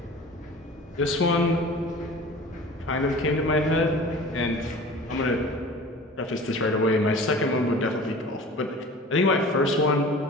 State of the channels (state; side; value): normal; both; correlation 0.41